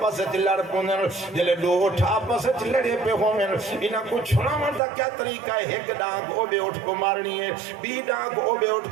سے لڑ پوندن جلے دو اٹھ آپس سے لڑے پہ ہومن انہاں کو چھڑاون دا کیا طریقہ ہے ایک ڈانگ او بے اٹھ کو مارنی ہے بی ڈانگ او بے اٹھ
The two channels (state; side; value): drops out; left; at 4.8 s